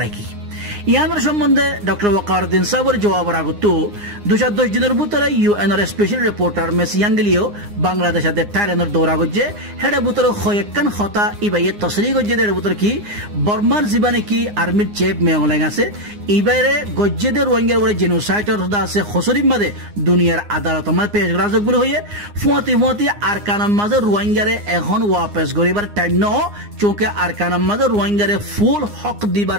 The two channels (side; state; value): left; late; 9.7 ms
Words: কি ইয়ানোর সম্বন্ধে ডক্টর ওয়াকারউদ্দিন সাহেবের জবাবের আগত 210 দিনের ভিতরে UN স্পেশাল রিপোর্টার মেস ইয়াঙ্গলিও বাংলাদেশের থাইল্যান্ডের দৌড়া গজ্জে হেডা ভিতরে কয়েকখান কথা ইবাইয়ে তসরি গজ্জে এর ভিতরে কি বর্মার জীবনে কি আর্মির চেপ মেয়ংলাইং আছে ইবাইরে গজ্জেদের রোহিঙ্গার উপরে জেনোসাইডর আছে খসরির মাঝে দুনিয়ার আদালত মাঝে পেশ রাজক বলে হইয়ে ফুয়াতি আরকানার মাঝে রোহিঙ্গারে এখন ওয়াপস গরিবার টাইম ন চোখে আরকানার মাঝে রোহিঙ্গারে ফুল হক